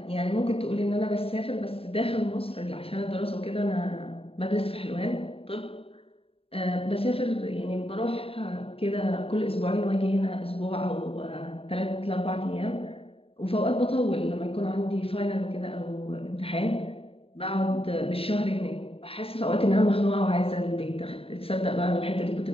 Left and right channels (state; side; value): late; right; 0.27 ms